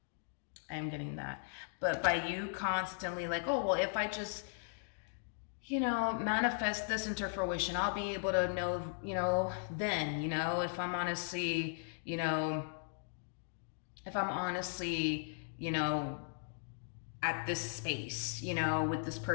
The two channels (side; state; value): right; silent; digital silence